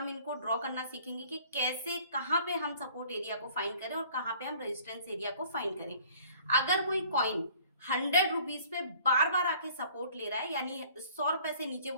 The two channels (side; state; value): both; inverted; correlation -0.53